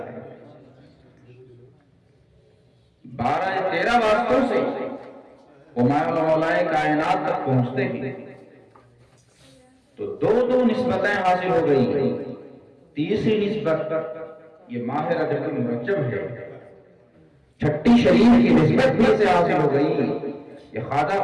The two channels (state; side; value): identical; both; correlation 1.00